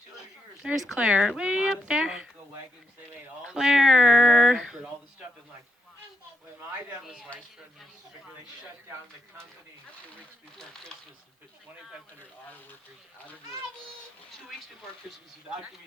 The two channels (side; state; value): both; normal; correlation 0.81